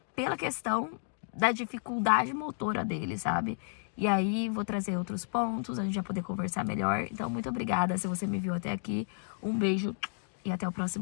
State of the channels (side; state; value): right; silent; digital silence